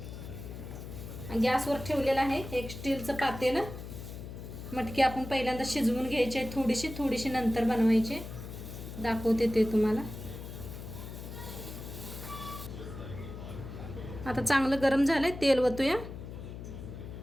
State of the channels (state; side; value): noise; left; hum, 10 dB below the sound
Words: गॅसवर ठेवलेलं आहे एक स्टीलचं पातेलं। मटकी आपण पहिल्यांदा शिजवून घ्यायची आहे, थोडीशी नंतर बनवायची, दाखवते ते तुम्हाला। आता चांगलं गरम झालंय, तेल ओतूया।